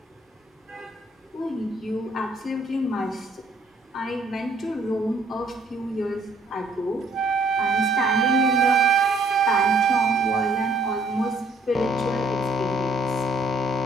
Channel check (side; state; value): left; quieter; 3.0 dB